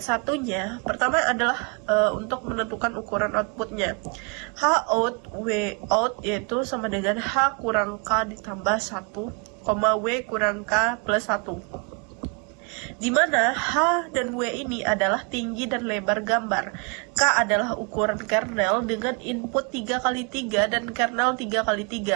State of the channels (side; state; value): left; quieter; 33.7 dB